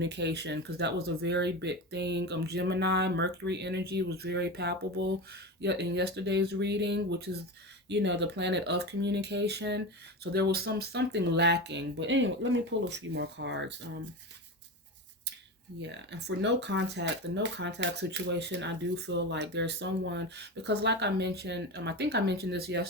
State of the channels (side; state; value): both; normal; correlation 0.23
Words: because that was a very big thing. Gemini Mercury energy was very palpable in yesterday's reading, which is, the planet of communication. So there was something lacking. But anyway, let me pull a few more cards. Yeah, and for no contact, the no contact situation, I do feel like there's someone, because like I mentioned, I think I mentioned this